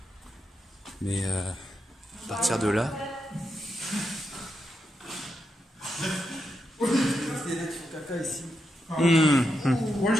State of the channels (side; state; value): both; normal; correlation 0.84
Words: Mais à partir de là...